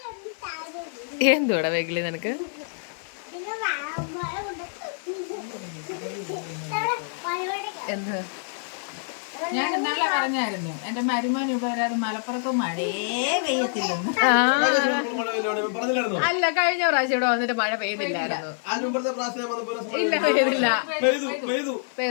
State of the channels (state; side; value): silent; right; 56 dB below the other